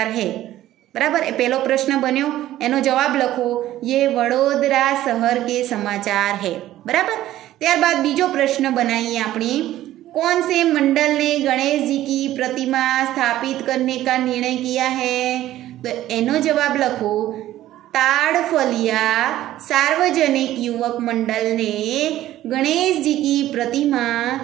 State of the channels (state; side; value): quieter; left; 14.0 dB